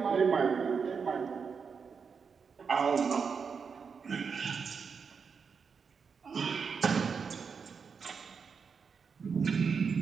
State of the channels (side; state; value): left; quieter; 5.8 dB